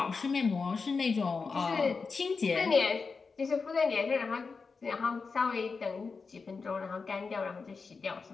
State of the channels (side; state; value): right; quieter; 4.7 dB